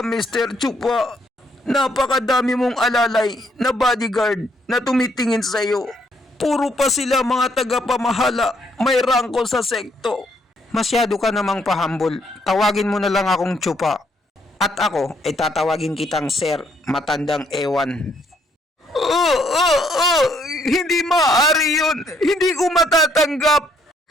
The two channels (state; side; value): normal; both; correlation 0.70